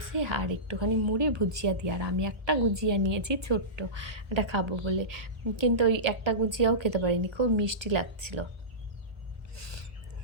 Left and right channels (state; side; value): late; left; 1.3 ms